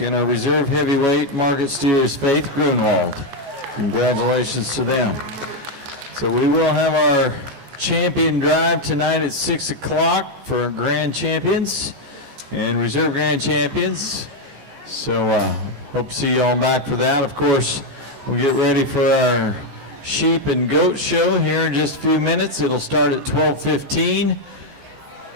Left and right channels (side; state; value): left; late; 14 ms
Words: our reserve heavyweight market steer is Faith Grunwald. Congratulations to them. So we will have our champion drive tonight at 6 o'clock for our grand champions and reserve grand champions. So hope to see you all back for that. Of course, we'll get ready for our sheep and goat show here in just a few minutes. It'll start at 12:15.